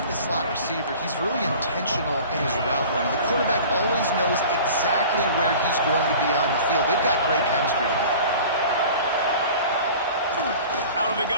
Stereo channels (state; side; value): inverted; both; correlation -0.42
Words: this slot receiver, he's really intentional in his route running. The quarterback always knows exactly where he's going to be on the field. They've got great chemistry together. Out of the